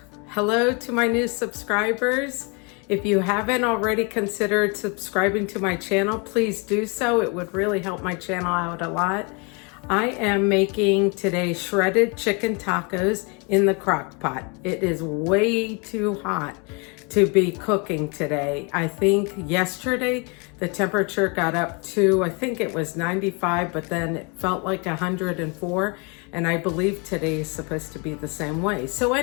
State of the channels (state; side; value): quieter; right; 32.3 dB